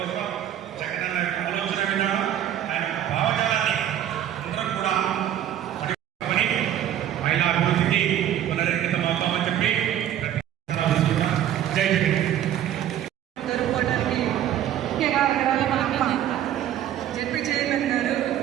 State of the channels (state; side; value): quieter; left; 11.2 dB